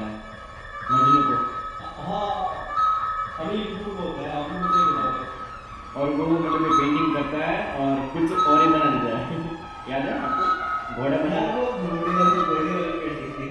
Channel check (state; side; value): identical; both; correlation 1.00